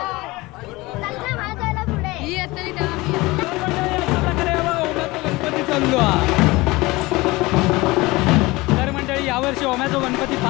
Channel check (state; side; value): quieter; right; 21.6 dB